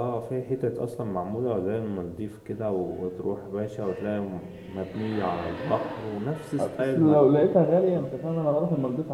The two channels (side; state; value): both; identical; correlation 1.00